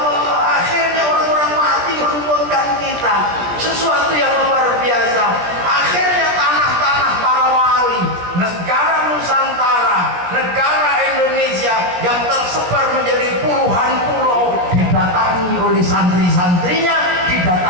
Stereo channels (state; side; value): late; left; 17 ms